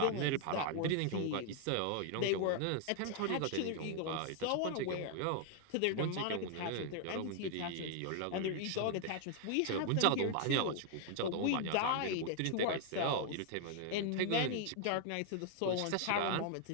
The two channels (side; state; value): both; different; correlation 0.00